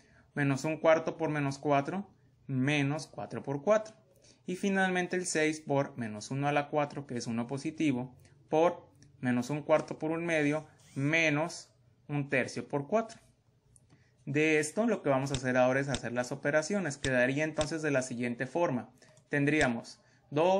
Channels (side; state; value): both; identical; correlation 1.00